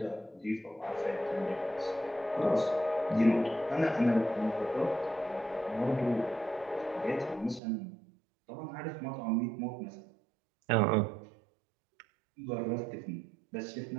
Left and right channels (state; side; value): drops out; left; at 7.6 s